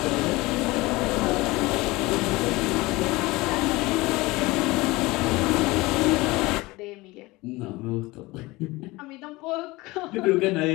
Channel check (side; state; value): right; quieter; 21.4 dB